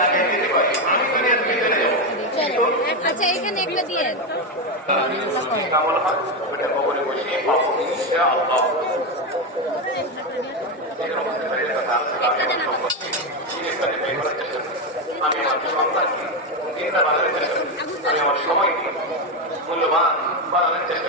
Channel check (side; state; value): both; normal; correlation 0.10